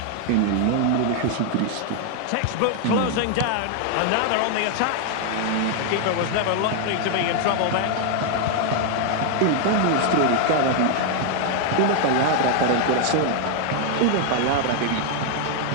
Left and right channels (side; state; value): both; different; correlation 0.00